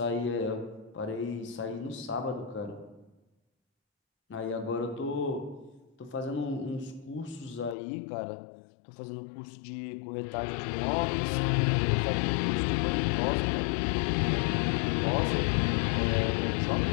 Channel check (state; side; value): drops out; right; at 7.8 s